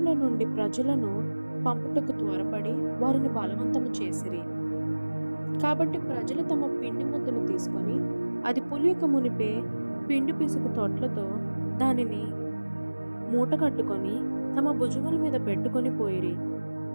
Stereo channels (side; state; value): both; inverted; correlation -1.00